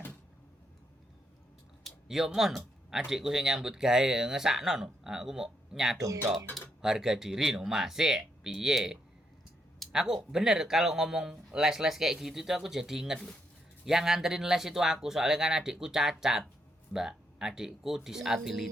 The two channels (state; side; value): normal; both; correlation 0.78